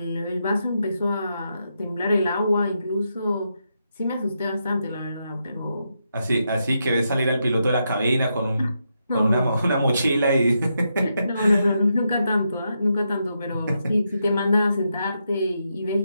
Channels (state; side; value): inverted; both; correlation -0.83